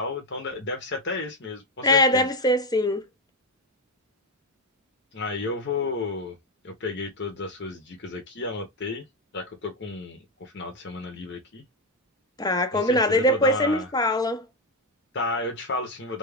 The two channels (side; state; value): both; normal; correlation 0.09